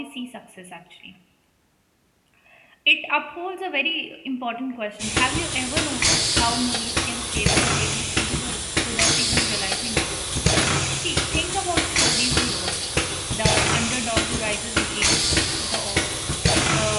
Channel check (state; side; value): identical; both; correlation 1.00